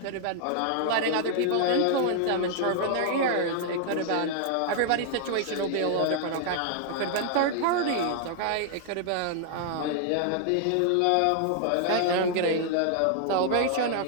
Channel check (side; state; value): both; different; correlation 0.00